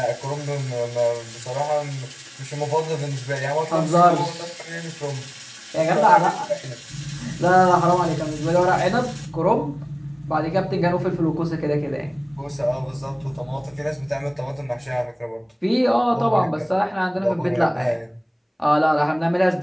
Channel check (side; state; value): both; identical; correlation 1.00